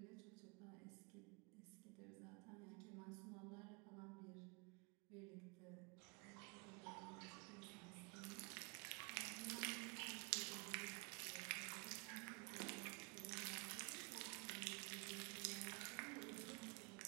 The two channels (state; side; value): quieter; left; 31.2 dB